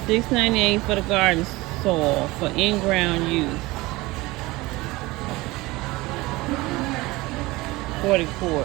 $6.98 for the garden soil for in-ground use. 40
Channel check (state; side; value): quieter; left; 21.0 dB